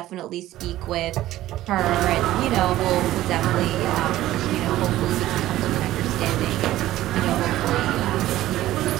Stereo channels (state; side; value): quieter; left; 14.8 dB